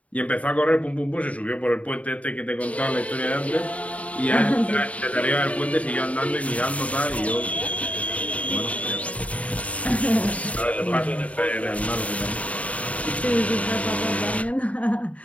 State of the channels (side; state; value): right; late; 0.067 ms